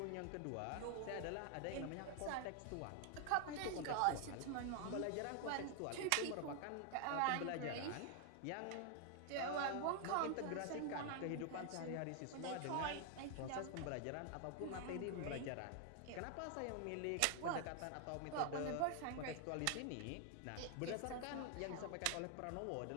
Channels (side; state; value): both; different; correlation 0.00